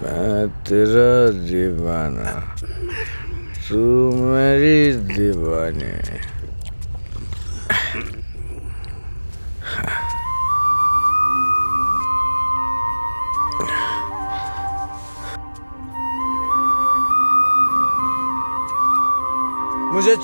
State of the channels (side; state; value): both; inverted; correlation -1.00